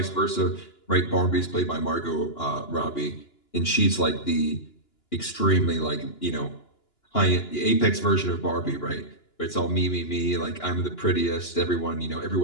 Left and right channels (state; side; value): late; right; 2.9 ms